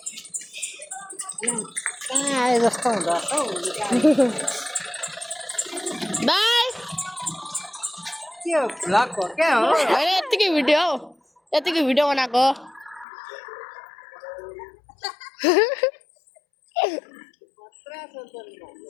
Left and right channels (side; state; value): right; drops out; at 13.1 s